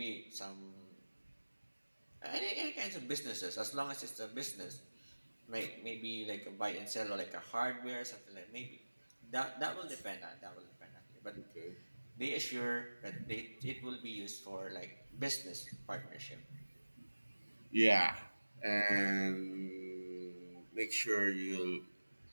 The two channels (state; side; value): inverted; both; correlation -1.00